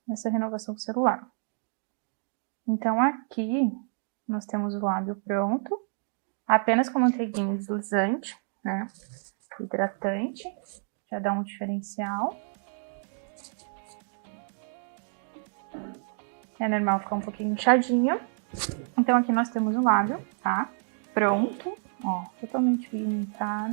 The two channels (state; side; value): silent; left; 59 dB below the other